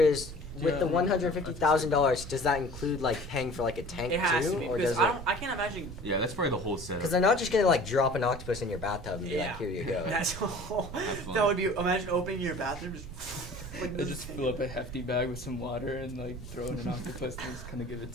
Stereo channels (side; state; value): right; noise; rumble, 15 dB below the sound